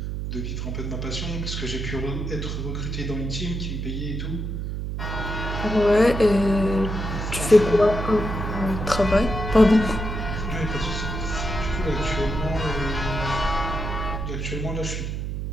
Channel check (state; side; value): noise; right; hum, 4 dB below the sound